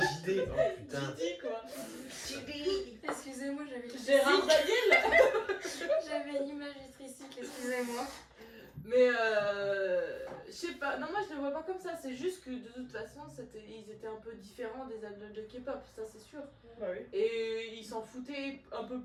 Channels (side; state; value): both; identical; correlation 1.00